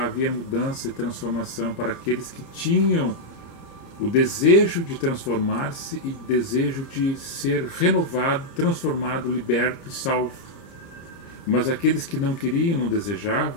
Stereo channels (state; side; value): late; right; 30 ms